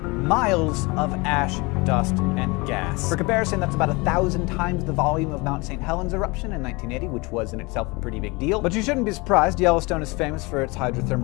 of ash, dust, and gas. For comparison, that's about 1,000 times the volume of Mount St. Helens eruption in 1980, which was in itself a pretty big deal. But you shouldn't be surprised. Yellowstone is famous for its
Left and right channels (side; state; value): right; quieter; 25.9 dB